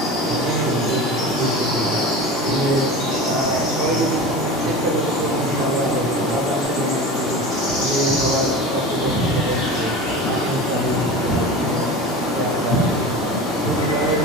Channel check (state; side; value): normal; both; correlation 0.32